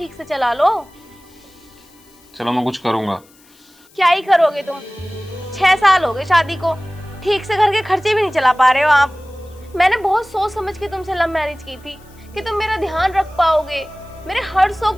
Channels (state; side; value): noise; left; hiss, 29 dB below the sound